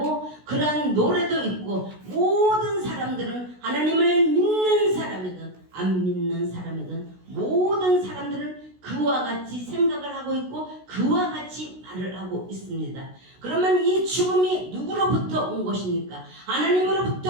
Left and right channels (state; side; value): late; left; 16 ms